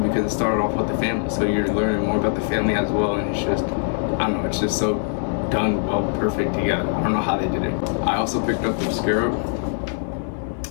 because it started off with the family. So you're learning more about the family as well, and it's just, I don't know, it's just so done well, perfect together. I don't know how they did it. I also picked up the scarab.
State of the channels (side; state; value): right; silent; digital silence